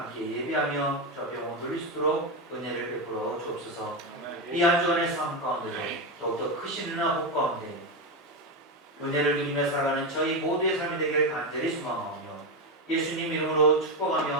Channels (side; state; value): both; normal; correlation 0.11